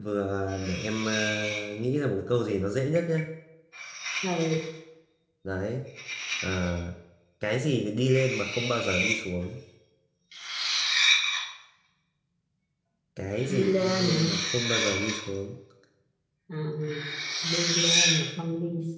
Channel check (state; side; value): identical; both; correlation 1.00